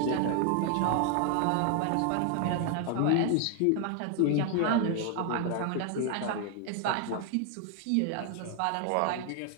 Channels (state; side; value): different; both; correlation 0.00